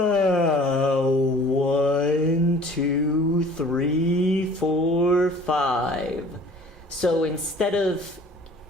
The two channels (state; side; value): normal; both; correlation 0.49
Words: 2, 3, 4, 5. So instead of